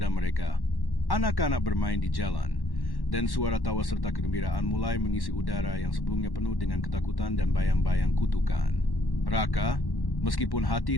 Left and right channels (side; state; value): right; late; 1.1 ms